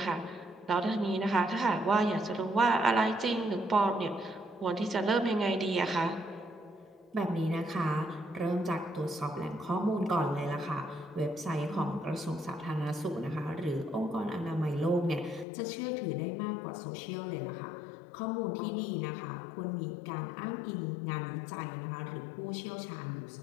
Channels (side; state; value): right; drops out; at 15.5 s